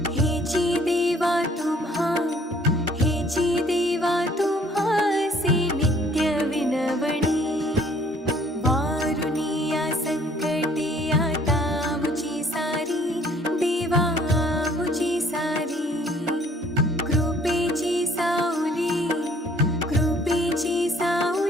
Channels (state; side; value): normal; both; correlation 0.59